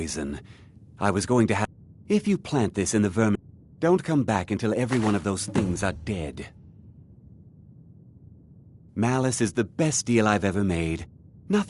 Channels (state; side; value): identical; both; correlation 1.00